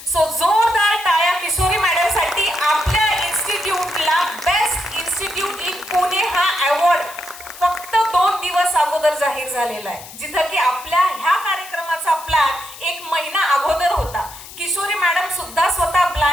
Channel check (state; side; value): noise; left; hiss, 16 dB below the sound